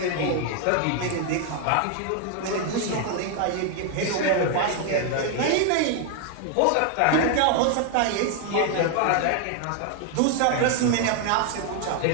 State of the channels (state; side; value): different; both; correlation 0.01